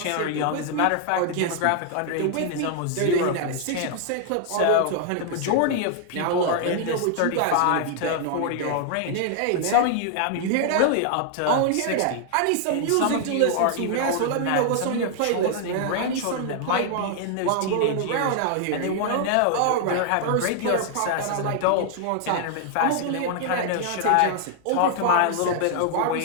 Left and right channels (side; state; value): both; different; correlation 0.00